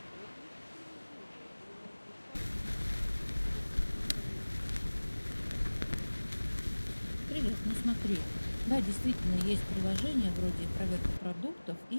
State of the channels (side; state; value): both; inverted; correlation -1.00